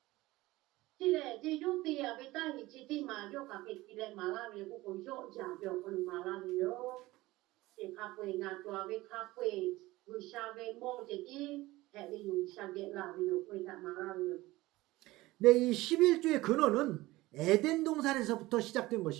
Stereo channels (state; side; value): quieter; left; 18.9 dB